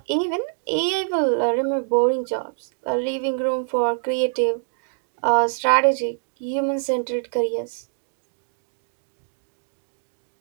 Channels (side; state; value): left; silent; digital silence